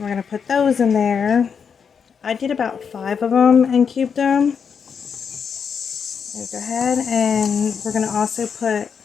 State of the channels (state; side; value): quieter; right; 6.6 dB